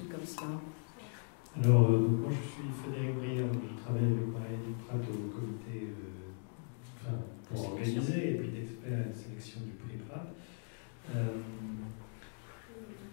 comme cela? Alors, moi je suis Frédéric Briand, je travaille avec Marie Prat au comité pour organiser et puis d'experts à la sélection du prix Prat.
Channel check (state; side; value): silent; right; 52 dB below the other